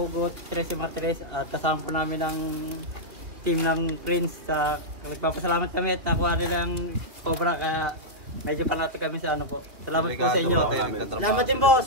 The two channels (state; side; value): late; left; 3.0 ms